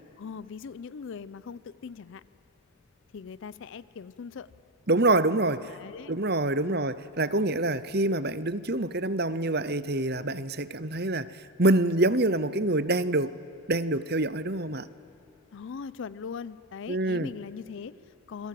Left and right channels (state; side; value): normal; both; correlation 0.14